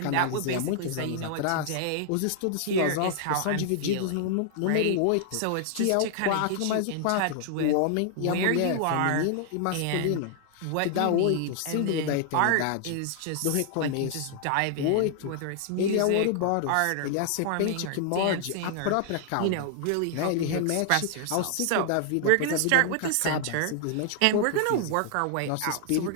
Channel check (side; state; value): both; different; correlation 0.00